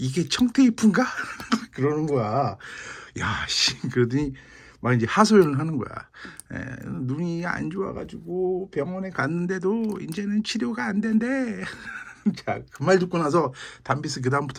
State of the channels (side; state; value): both; identical; correlation 1.00